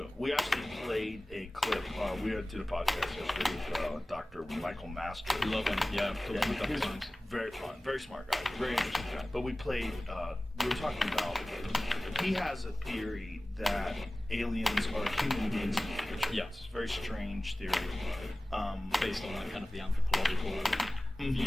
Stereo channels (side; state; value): both; normal; correlation 0.98